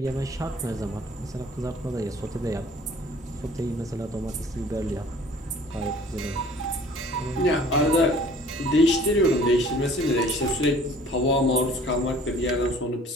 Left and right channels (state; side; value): normal; both; correlation 0.51